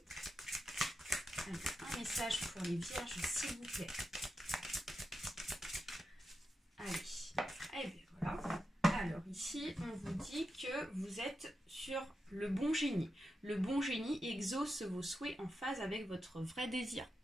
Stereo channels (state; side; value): normal; both; correlation 0.88